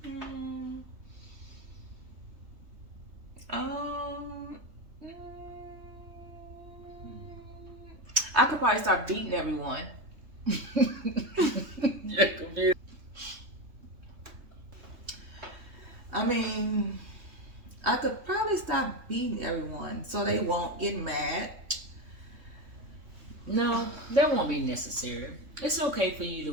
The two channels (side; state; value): left; late; 3.2 ms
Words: I could probably start beating everyone. You're confused. I mean, I could probably stop beating everyone so they won't get mad. No, that won't be necessary. It's okay for you